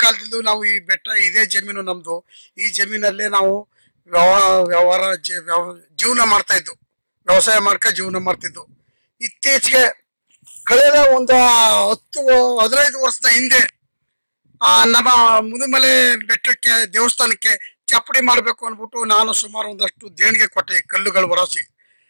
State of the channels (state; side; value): inverted; both; correlation -1.00